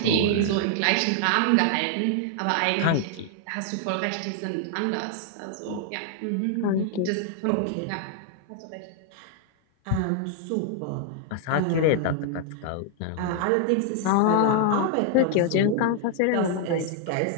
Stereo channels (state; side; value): different; both; correlation 0.00